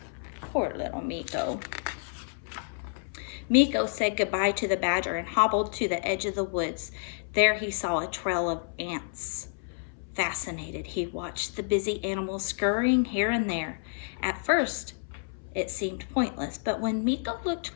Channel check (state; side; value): silent; right; 57 dB below the other